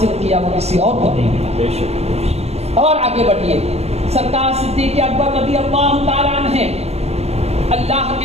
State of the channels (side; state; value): left; late; 0.31 ms